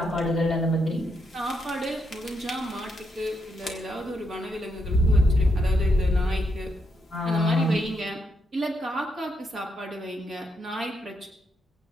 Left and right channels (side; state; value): both; normal; correlation 0.80